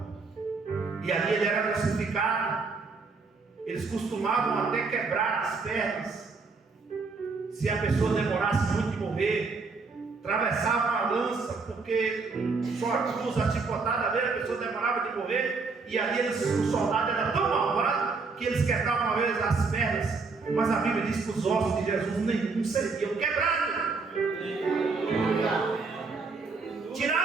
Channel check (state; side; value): quieter; left; 4.3 dB